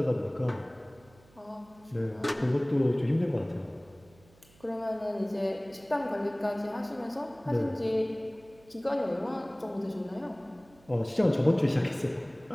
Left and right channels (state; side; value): noise; right; hum, 28 dB below the sound